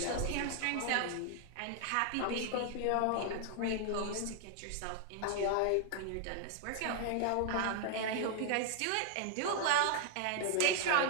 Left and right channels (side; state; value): both; different; correlation 0.00